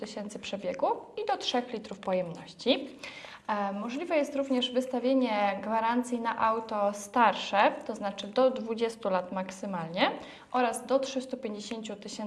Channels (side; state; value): both; identical; correlation 1.00